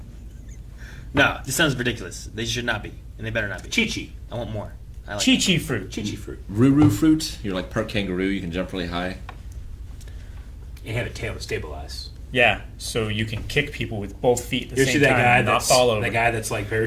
No, this sounds ridiculous. They should not be, and they better not be. Chi-Chi. I want more. I like Chi-Chi fruit. Chi-Chi fruit. Ruru fruit. You're like part kangaroo. You can jump really high. And have a tail to stabilize. Yeah, so you can kick people with both feet at the You same see that time guy and not that's fall over. that guy that's like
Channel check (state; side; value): identical; both; correlation 1.00